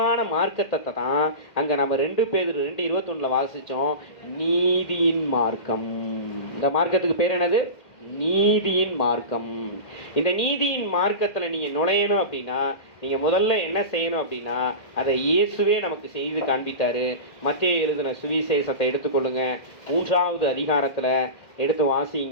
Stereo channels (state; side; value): late; right; 1.6 ms